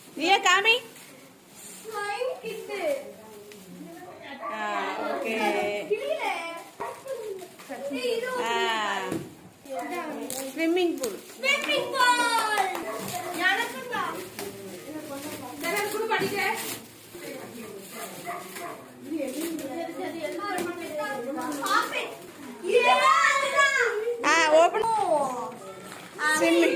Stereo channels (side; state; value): both; identical; correlation 1.00